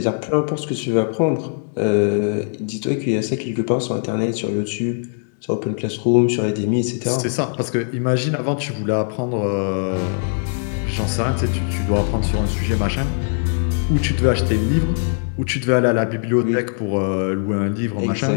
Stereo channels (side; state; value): right; silent; digital silence